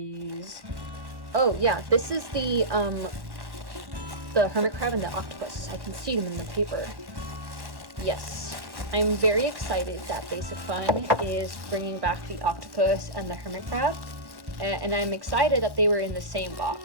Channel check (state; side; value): late; left; 1.1 ms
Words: Oh yeah, this is the hermit crab and the octopus. I can see them in the paper. Yes, I'm very excited that Basic Fun is bringing back the octopus and the hermit crab, and I'm excited that they were in the same box.